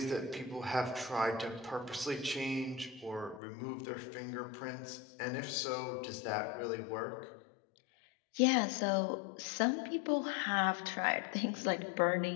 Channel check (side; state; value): right; drops out; at 3.4 s